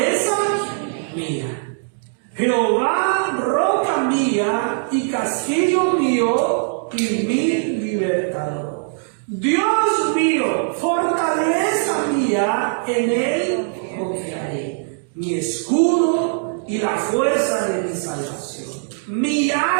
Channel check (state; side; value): silent; left; digital silence